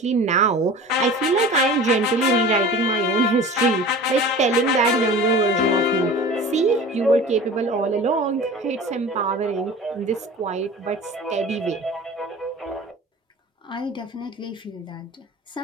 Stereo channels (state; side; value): normal; both; correlation 0.38